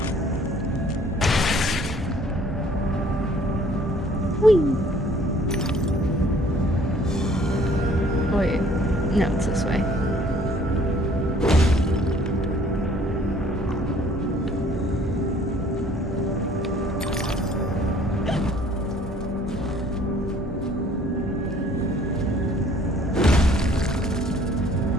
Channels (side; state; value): both; normal; correlation 0.57